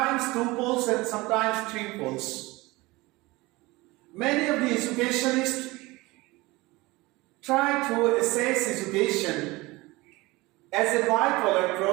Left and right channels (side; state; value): left; quieter; 21.8 dB